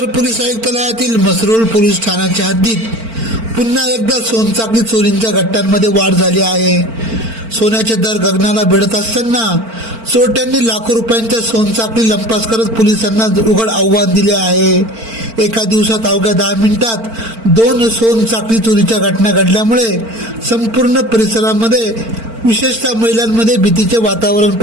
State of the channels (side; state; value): left; late; 4.4 ms